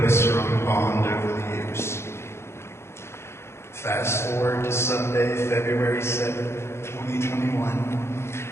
a strong bond over the years. Fast forward to Sunday, February 7th, 2021.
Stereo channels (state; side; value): late; right; 0.12 ms